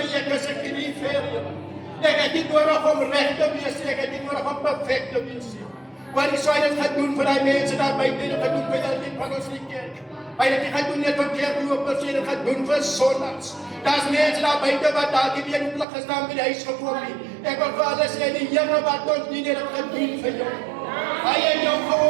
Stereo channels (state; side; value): drops out; left; at 15.9 s